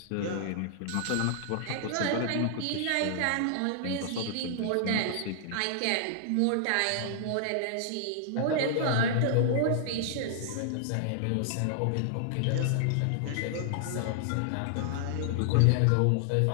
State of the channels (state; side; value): different; both; correlation -0.01